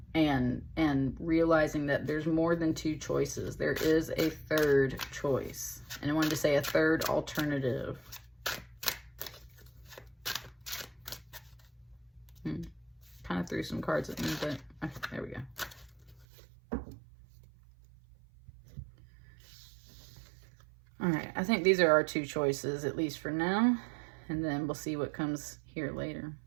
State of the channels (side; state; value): left; drops out; at 16.2 s